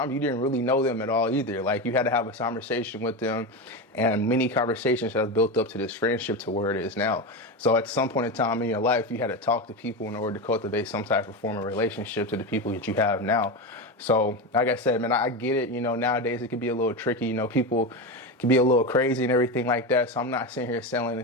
you didn't really know them at all either. Like, you had to have a conversation with them, and many conversations have built up to this friendship to where it is now. So at some point in time in your life, you had to talk to people in order to cultivate some type of form of relationship to the people that you have now. So like I said, man, I get it. You know, nowadays it can be a little tricky. You know, people can be a little crazy and everything like that. So I'm not sitting here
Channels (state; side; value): normal; both; correlation 0.18